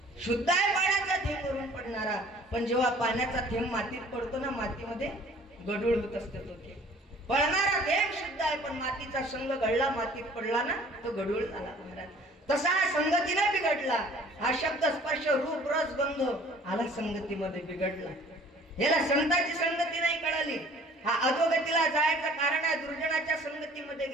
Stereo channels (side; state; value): both; normal; correlation 0.52